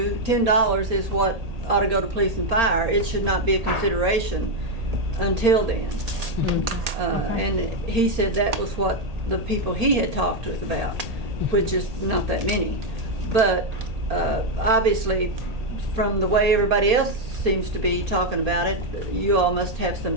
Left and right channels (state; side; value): late; left; 1.8 ms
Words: $10 is what ought to go to police and fire. It should not be a consideration until then. And he said that was what the people he had talked with about, which is not that many. But obviously, from the way everybody else seems to be talking about it, you all must have some